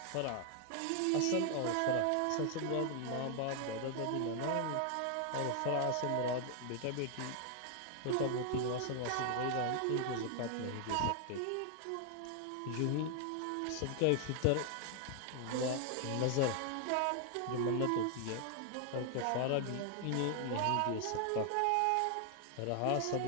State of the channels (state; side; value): different; both; correlation 0.00